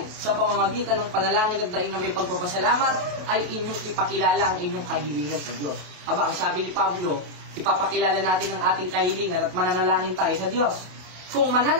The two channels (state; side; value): late; left; 27 ms